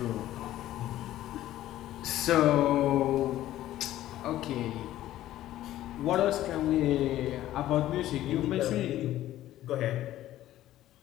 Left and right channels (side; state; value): right; quieter; 13.9 dB